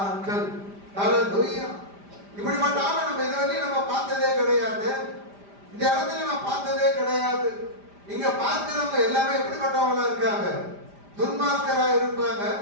ஆட்கள். ஹல்லேலூயா. இப்படிப்பட்ட ஆளை நம்ம இதுவரையும் நம்ம பார்த்ததே கிடையாது. இந்த இடத்துல நான் பார்த்ததே கிடையாது. இங்க பார்க்கிறவங்க எல்லாமே எப்படிப்பட்டவங்களா இருக்காங்க? துன்மார்க்கரா இருப்பாங்க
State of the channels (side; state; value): left; late; 5.0 ms